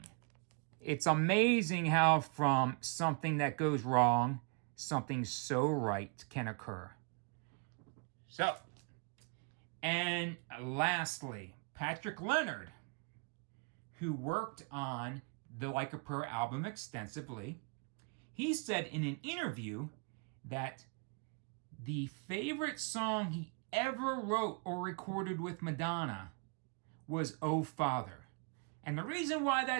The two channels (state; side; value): quieter; left; 36.2 dB